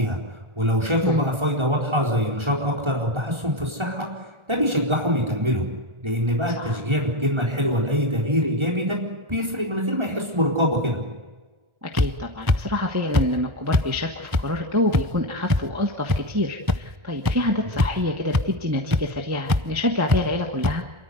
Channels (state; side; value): late; left; 1.4 ms